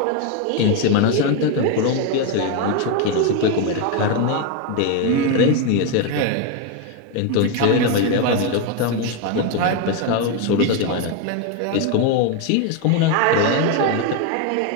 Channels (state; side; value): different; both; correlation 0.01